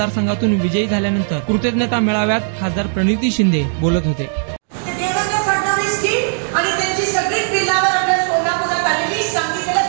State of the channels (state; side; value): silent; left; digital silence